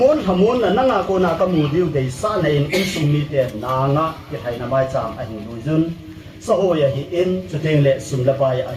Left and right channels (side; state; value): both; identical; correlation 1.00